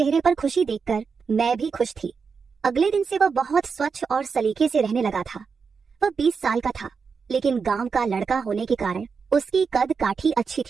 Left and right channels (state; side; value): quieter; left; 5.5 dB